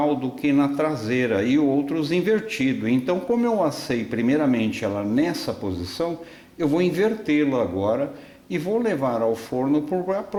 do que na traseira, e outros invertido. Então, como eu assei primeiramente ela nessa posição, eu vou invertê-la agora e vou levar ao forno por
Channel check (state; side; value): identical; both; correlation 1.00